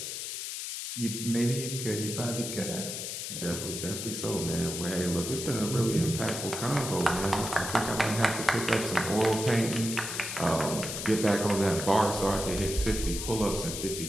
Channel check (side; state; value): left; noise; hiss, 5 dB below the sound